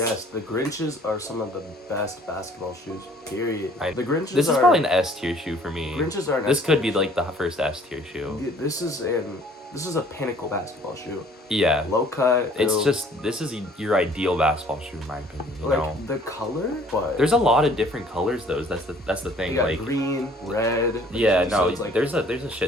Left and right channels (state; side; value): normal; both; correlation 0.56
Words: the Grinches are some of the best basketball shoes. Period. The Grinches. This is probably an S tier shoe for me. Grinches are. This could be like the first S tier shoe. This is a pinnacle basketball shoe. Yeah. Low cut. This is your ideal basketball shoe in my opinion. You know. The color, but there's a lot of different colors though. That's the thing. You got like green, red. Yeah, no. So there's a